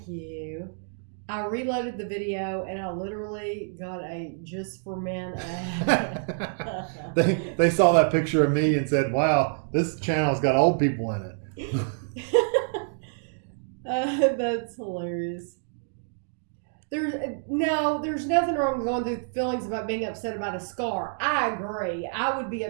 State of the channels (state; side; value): silent; left; digital silence